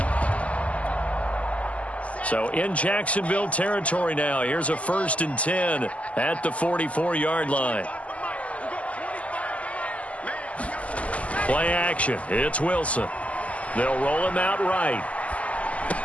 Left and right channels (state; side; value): late; right; 0.068 ms